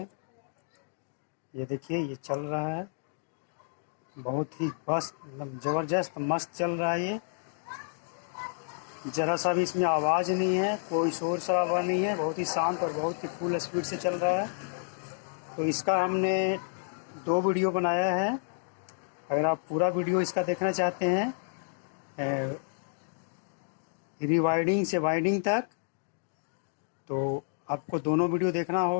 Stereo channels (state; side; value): silent; right; digital silence